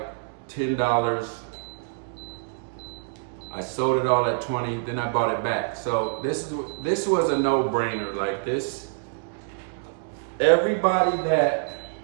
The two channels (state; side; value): silent; left; digital silence